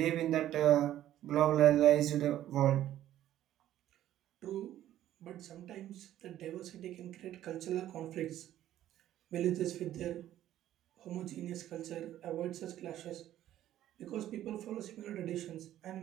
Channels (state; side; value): quieter; left; 12.6 dB